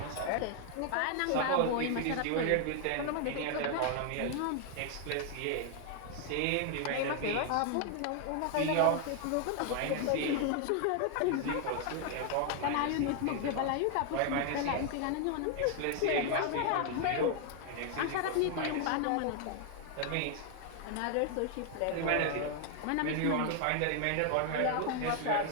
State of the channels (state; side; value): different; both; correlation 0.00